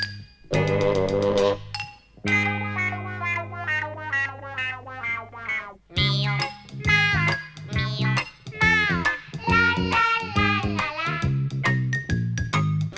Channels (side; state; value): both; identical; correlation 1.00